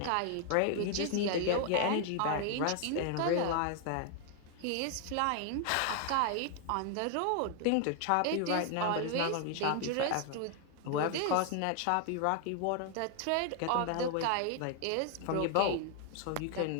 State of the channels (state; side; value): different; both; correlation 0.00